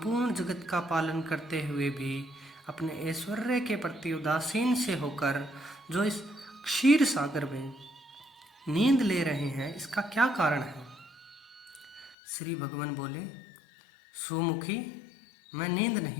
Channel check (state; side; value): drops out; right; at 12.2 s